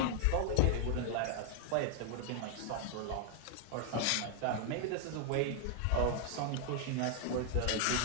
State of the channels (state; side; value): different; both; correlation 0.00